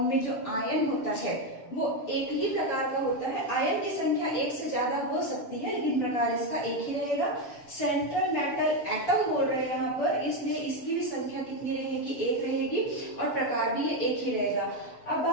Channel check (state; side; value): late; right; 7.1 ms